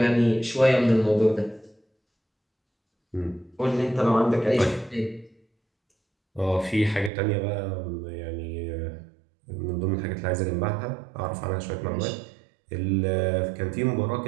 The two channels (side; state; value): left; drops out; at 7.1 s